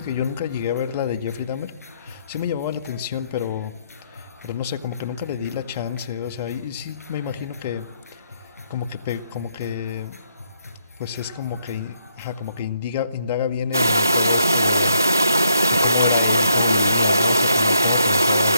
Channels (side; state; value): both; inverted; correlation -0.73